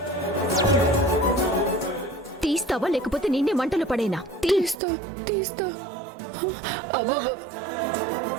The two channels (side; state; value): left; drops out; at 4.8 s